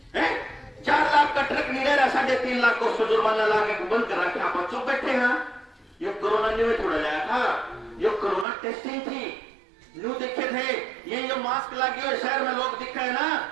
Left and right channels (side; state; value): left; drops out; at 8.5 s